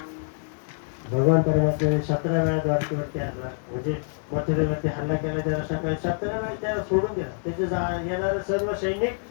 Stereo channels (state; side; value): silent; right; 61 dB below the other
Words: भगवान परमात्म्याने 17 वेळा द्वारकेवरती हल्ला, म्हणजे मथुरेवरती हल्ला केला. त्याला सकाळी 17 वेळा त्याला सोडून दिला. त्याचे येणारे सर्व सैनिक